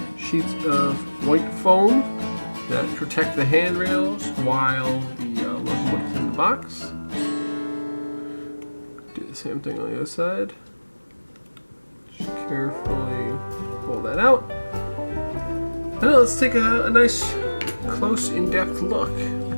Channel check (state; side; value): inverted; both; correlation -1.00